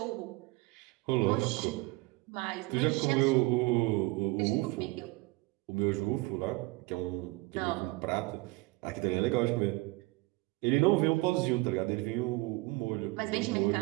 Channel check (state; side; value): quieter; left; 23.3 dB